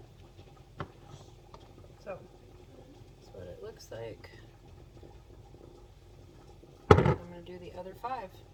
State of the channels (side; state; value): both; identical; correlation 1.00